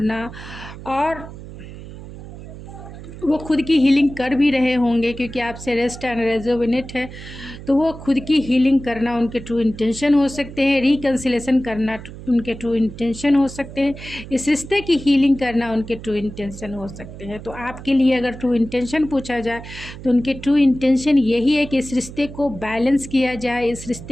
और वो खुद की हीलिंग कर भी रहे होंगे, क्योंकि आपसे रेस्ट एंड रेजोनेट है। तो वो खुद की हीलिंग करना उनके ट्रू इंटेंशन हो सकते हैं, रिकन्सिलेशन करना उनके ट्रू इंटेंशन हो सकते हैं, इस रिश्ते की हीलिंग करना उनके ट्रू इंटेंशन हो सकते हैं। तो आपके लिए अगर ट्रू इंटेंशन पूछा जाए तो उनके ट्रू इंटेंशन यही है कि इस रिश्ते को बैलेंस किया जाए, इस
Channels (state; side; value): noise; right; hum, 13 dB below the sound